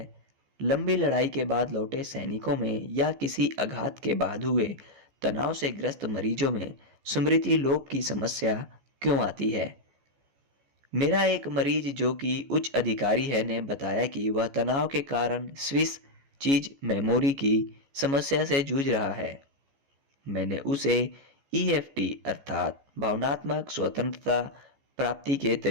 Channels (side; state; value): left; late; 14 ms